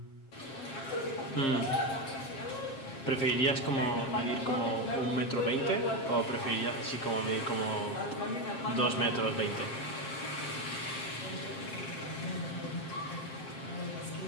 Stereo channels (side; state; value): right; late; 7.5 ms